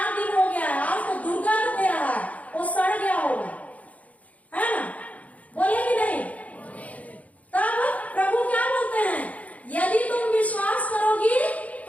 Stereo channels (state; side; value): late; right; 0.070 ms